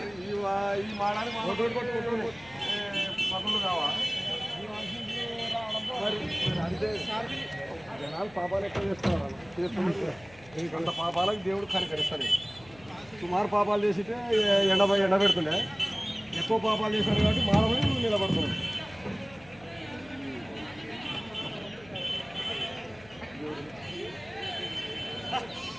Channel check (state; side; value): noise; left; hum, 23 dB below the sound